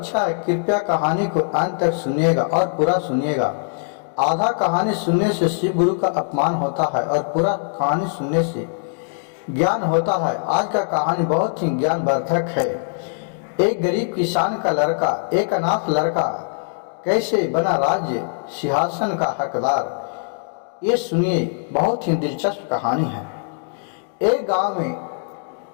है। कृपया कहानी को अंत तक सुनिएगा और पूरा सुनिएगा। आधा कहानी सुनने से शिव गुरु का अपमान होता है और पूरा कहानी सुनने से ज्ञान होता है। आज का कहानी बहुत ही ज्ञानवर्धक है। एक गरीब किसान का लड़का, एक अनाथ लड़का कैसे बना राज्य सिंहासन का हकदार, ये सुनिए। बहुत ही दिलचस्प कहानी है। एक गांव में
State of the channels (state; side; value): silent; right; digital silence